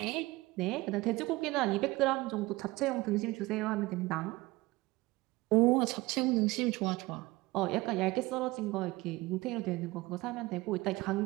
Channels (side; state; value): left; quieter; 20.9 dB